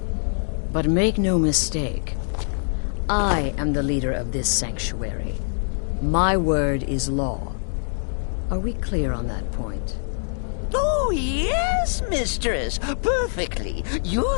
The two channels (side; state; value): right; silent; digital silence